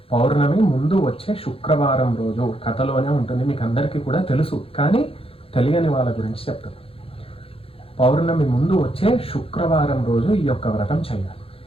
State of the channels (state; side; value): late; right; 0.27 ms